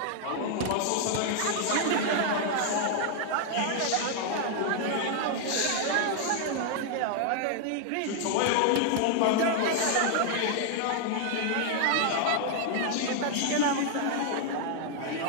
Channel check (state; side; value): different; both; correlation 0.00